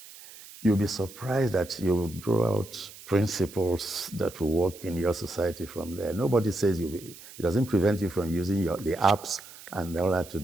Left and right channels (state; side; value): noise; right; hiss, 18 dB below the sound